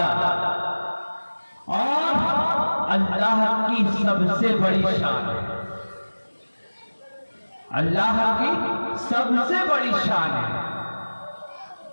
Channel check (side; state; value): both; inverted; correlation -1.00